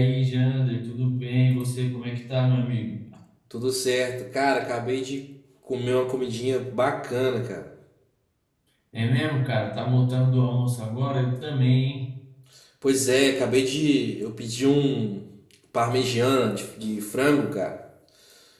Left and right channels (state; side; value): identical; both; correlation 1.00